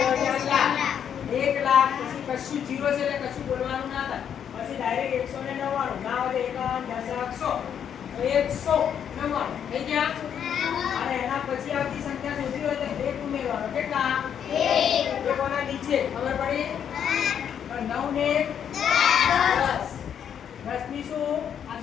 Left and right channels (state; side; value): quieter; right; 8.6 dB